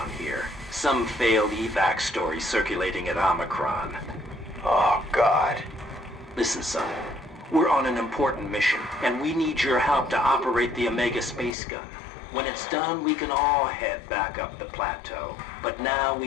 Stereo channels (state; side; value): drops out; right; at 11.6 s